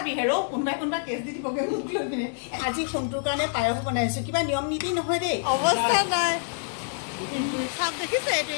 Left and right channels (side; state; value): right; silent; 60 dB below the other